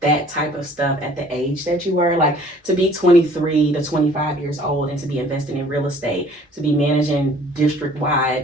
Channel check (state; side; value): normal; both; correlation 0.54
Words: that type of stuff at the age that you were, like to be 23 to 25 years old and to be investing in real estate, to be managing